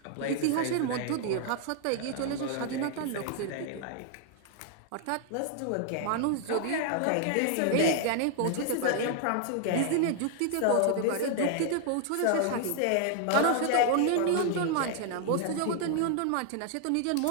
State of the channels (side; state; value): both; different; correlation 0.00